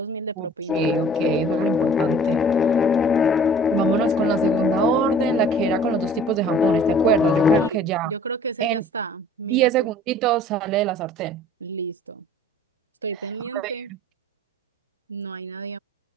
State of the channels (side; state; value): both; normal; correlation 0.50